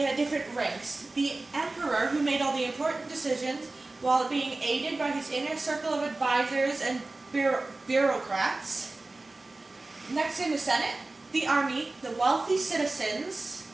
had different ranks. The emperor, who made all the important decisions, while being aided by his inner circle of advisors and bureaucrats. Next in the Senate, the army, the wealthy citizens,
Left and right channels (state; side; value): quieter; left; 3.1 dB